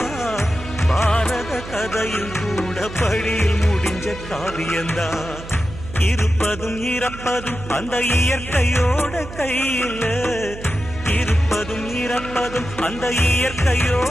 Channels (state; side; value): noise; right; hum, 13 dB below the sound